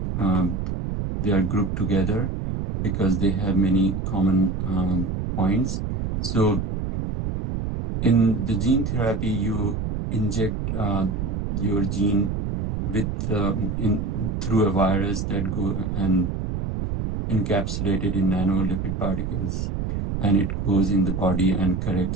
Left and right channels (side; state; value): right; noise; rumble, 2 dB below the sound